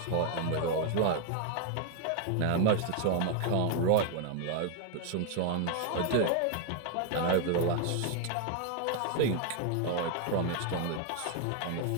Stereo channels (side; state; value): both; different; correlation 0.00